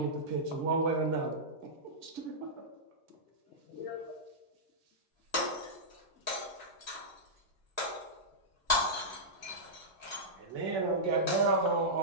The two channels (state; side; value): late; left; 2.1 ms